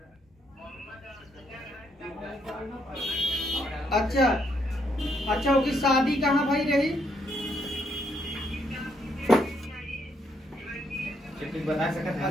अच्छा अच्छा, उसकी शादी कहाँ भाई रही? बता सकते हैं।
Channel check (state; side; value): normal; both; correlation 0.73